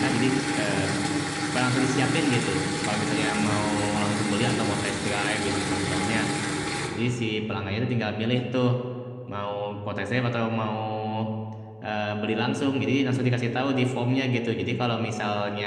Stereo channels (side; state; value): both; identical; correlation 1.00